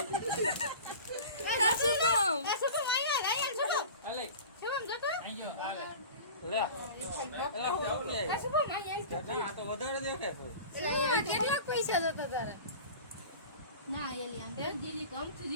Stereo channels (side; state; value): both; inverted; correlation -0.37